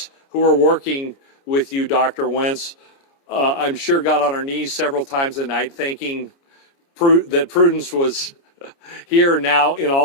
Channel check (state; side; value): late; right; 29 ms